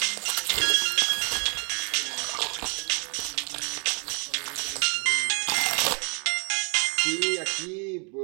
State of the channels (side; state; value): left; quieter; 35.8 dB